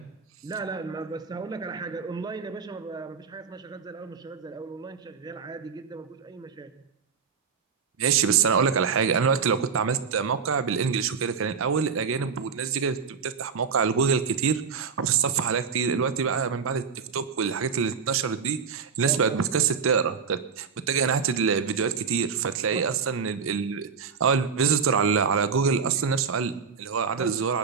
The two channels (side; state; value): left; quieter; 6.0 dB